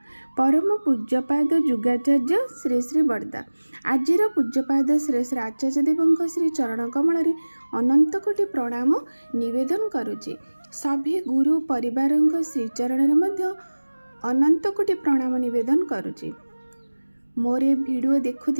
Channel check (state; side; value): inverted; both; correlation -1.00